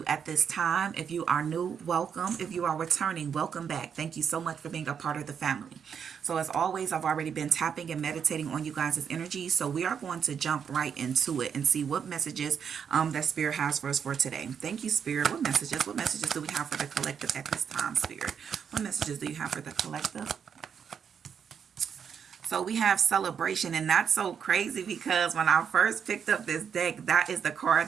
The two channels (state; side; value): quieter; left; 7.3 dB